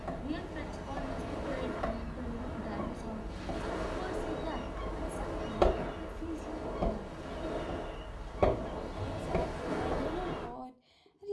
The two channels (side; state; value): both; identical; correlation 1.00